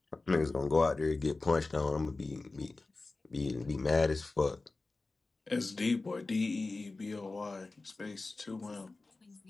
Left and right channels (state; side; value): quieter; right; 3.5 dB